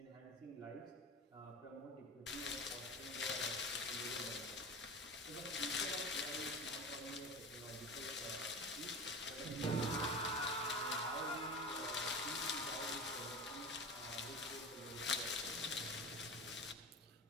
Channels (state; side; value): normal; both; correlation 0.30